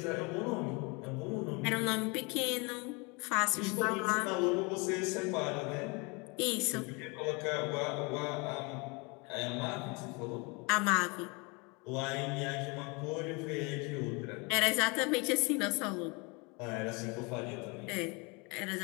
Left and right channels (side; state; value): right; quieter; 29.3 dB